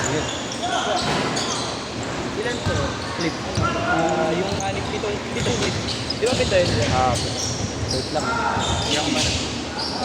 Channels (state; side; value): identical; both; correlation 1.00